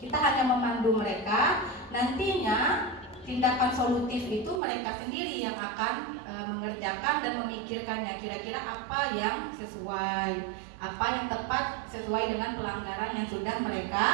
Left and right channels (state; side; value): drops out; left; at 4.6 s